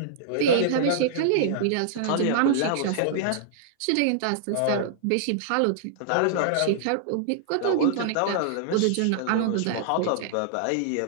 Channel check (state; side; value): different; both; correlation -0.01